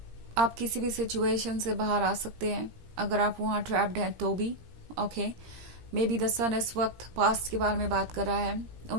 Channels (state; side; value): late; left; 17 ms